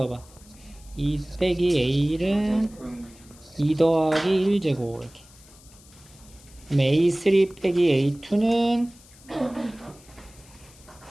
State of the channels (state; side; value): noise; left; hiss, 24 dB below the sound